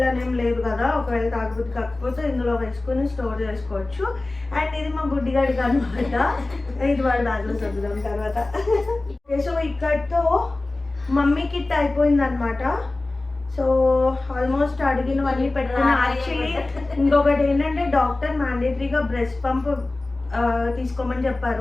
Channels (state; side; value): quieter; right; 3.0 dB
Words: లేదు కదా. ఒకవేళ తాగబుద్ధి కాకపోతే ఇందులో వేసుకొని స్టోర్ చేసుకోవచ్చు. అండ్ ఇది మా బుడ్డిగాడికి అనమాట. ఇది వాడు దాంట్లో చదువుదాం తర్వాత. ఓకే, సో ఇక్కడతో మమ్మీ కిట్ అయిపోయింది అనమాట. సో ఆల్మోస్ట్ అడిగినవన్నీ పెట్టుకున్నా. యాక్చువల్లీ ఇంకొకటి ఏంటంటే డాక్టర్ మ్యాండేటరీగా బ్రెస్ట్ పంప్ తీసుకోమని